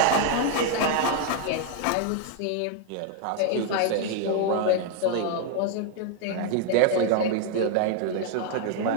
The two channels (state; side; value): different; both; correlation 0.00